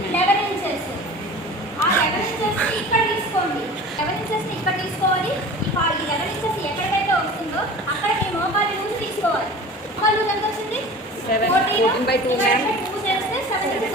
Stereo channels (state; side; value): normal; both; correlation 0.39